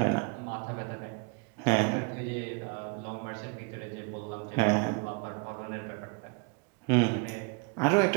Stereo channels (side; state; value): left; quieter; 33.3 dB